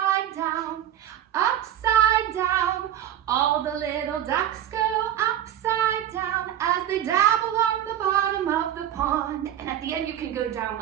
down, upside down. All the little ducks go upside down as they dab along the bottom of the pond. And at the end, you can go down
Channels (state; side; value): quieter; left; 11.1 dB